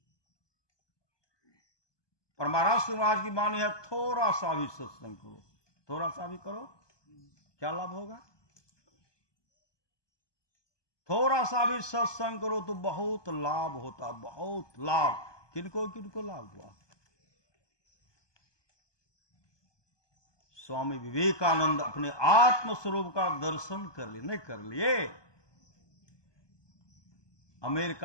पर महाराज महाराज की वाणी है थोड़ा सा भी सत्संग करो, थोड़ा सा भी करो, क्या लाभ होगा? थोड़ा सा भी सत्संग करो तो बहुत लाभ होता, बहुत लाभ। किनको किनको लाभ हुआ? स्वामी विवेकानंद अपने आत्म स्वरूप का दर्शन कर लिए, नहीं कर लिए?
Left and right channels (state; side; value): late; right; 1.2 ms